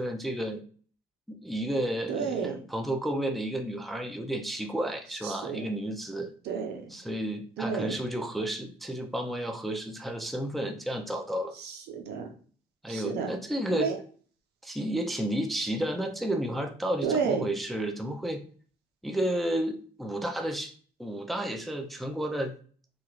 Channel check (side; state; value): both; normal; correlation 0.67